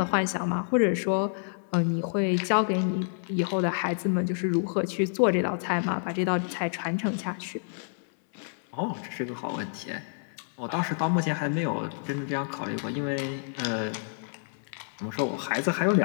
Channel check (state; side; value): silent; right; 59 dB below the other